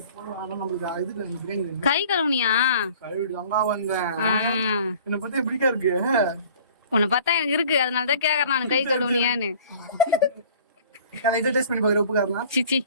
கை கழுவுனியா? கழுவிடு அங்க வந்தேன். என்ன பத்தி எப்படிக்கா இருக்கு? உன்னை பார்த்தா எனக்கு இருக்கு, அதனாலதான் கேக்குறேன் நான் கை கழுவுனியான்னு. இதை டேஸ்ட் பண்ணி பாக்குற உப்பு காரலாம். சிச்சி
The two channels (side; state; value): both; inverted; correlation -0.49